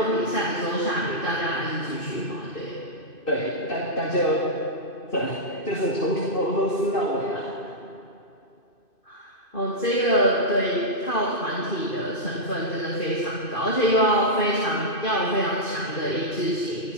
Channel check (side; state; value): right; late; 2.5 ms